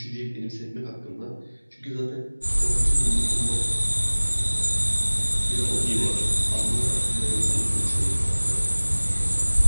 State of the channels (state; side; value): inverted; both; correlation -1.00